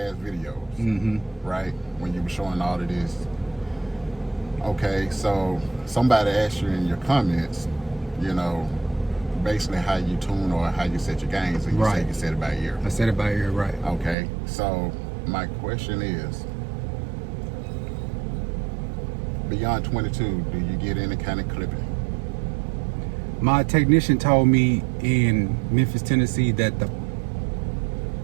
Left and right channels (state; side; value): drops out; left; at 14.2 s